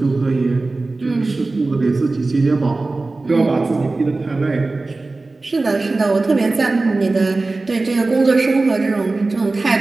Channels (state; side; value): quieter; left; 3.4 dB